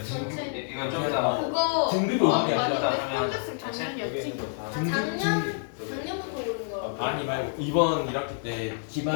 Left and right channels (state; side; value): silent; right; 59 dB below the other